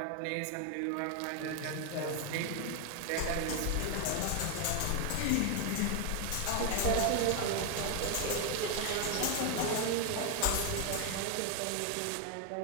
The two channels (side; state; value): both; different; correlation 0.01